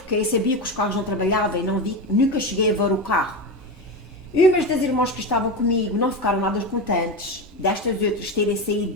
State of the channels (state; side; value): normal; both; correlation 0.19